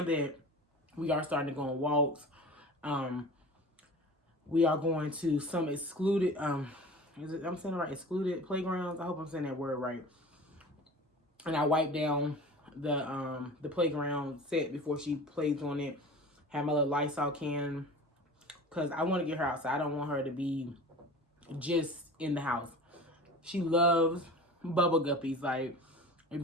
that we are starting to go on walks, we are going to some excluded, I'm saying it right, excluded playgrounds. I hope I'm saying that word right. And I wipe down the playground set before she plays on it. Have my little Lysol can because I want to get her outside. I don't want her to be just in the house. She loves bubble guppies. Like,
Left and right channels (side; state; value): both; normal; correlation 0.38